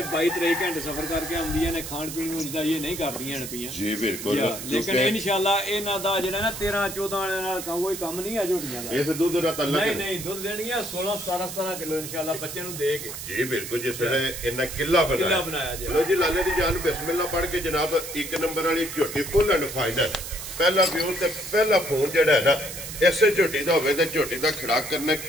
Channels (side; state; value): right; noise; hiss, 9 dB below the sound